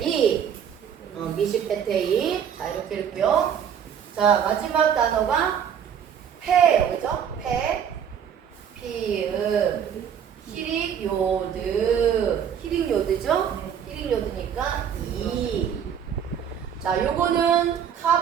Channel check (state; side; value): quieter; left; 8.3 dB